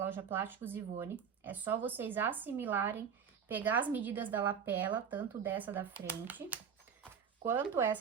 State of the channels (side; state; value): left; quieter; 7.2 dB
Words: Plásticos Ivone. É só vocês assimilarem, pegar as medidas da lapela, tanto dessa da frente, quanto